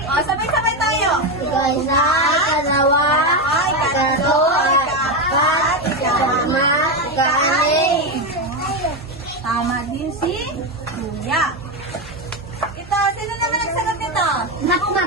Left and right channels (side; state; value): both; normal; correlation 0.11